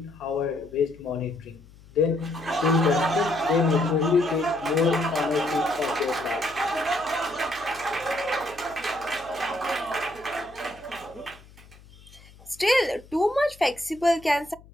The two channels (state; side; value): noise; left; hum, 23 dB below the sound